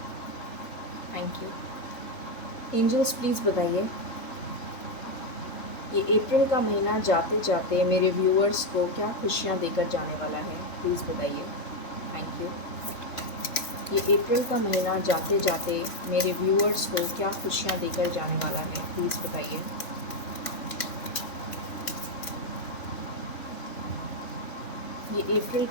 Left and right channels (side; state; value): right; late; 3.4 ms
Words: Thank you. Angels, please बताइए, ये April का महीना जाते जाते मेरे viewers को क्या खुशियाँ देकर जाने वाला है, प्लीज़ बताइए। Thank you. ये अप्रैल का महीना जाते जाते मेरे व्यूअर्स को क्या खुशियाँ देकर जाने वाला है, प्लीज़ बताइए। ये अप्रैल